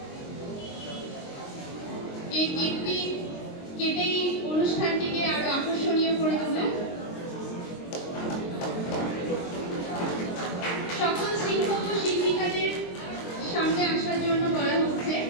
এই কেকটি কেটেই অনুষ্ঠানটিকে আরো আকর্ষণীয় করে তোলে। সকল শিক্ষক ও শিক্ষিকাদের সামনে আসার জন্য বলা হচ্ছে।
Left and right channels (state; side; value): late; right; 23 ms